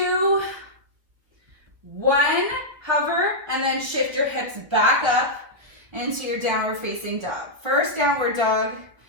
1, hover, and then shift your hips back up into your downward facing dog. First downward dog.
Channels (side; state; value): left; late; 1.4 ms